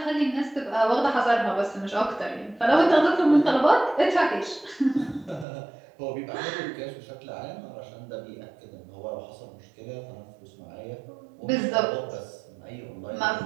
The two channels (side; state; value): left; drops out; at 5.5 s